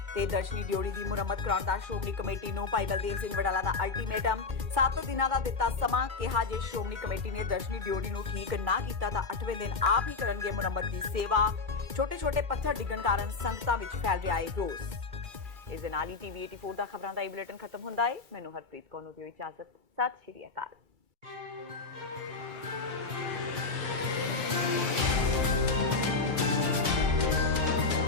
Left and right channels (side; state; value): right; quieter; 4.1 dB